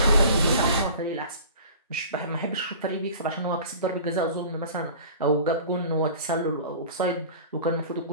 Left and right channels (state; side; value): inverted; both; correlation -0.41